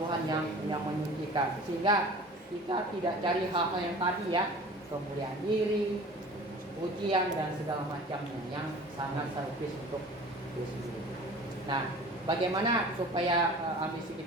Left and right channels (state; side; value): normal; both; correlation 0.43